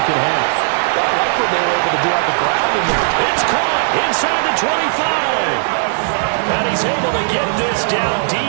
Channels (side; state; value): left; silent; digital silence